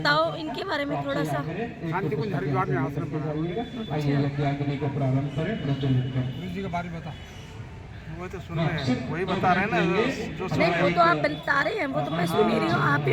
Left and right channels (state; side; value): identical; both; correlation 1.00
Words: इनके बारे में थोड़ा सा। शांति कुंज हरिद्वार में आश्रम बनाया। आइए यज्ञाग्नि को प्रारंभ करें, प्रज्वलित करें। गुरु जी के बारे में बता। वो तो सुन रहे हैं, वही बता रहे हैं ना जो सुन नहीं, रहे वो हैं। तो आप बता रहे हैं, वो तो मैं सुन ही रही हूँ। आप